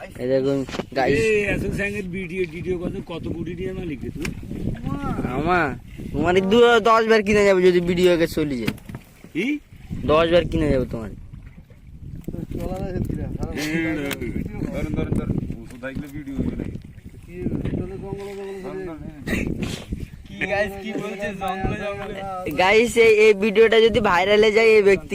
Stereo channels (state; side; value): identical; both; correlation 1.00